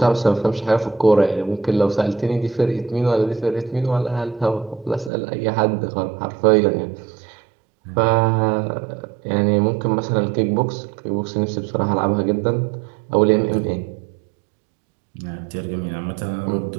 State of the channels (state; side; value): drops out; left; at 5.1 s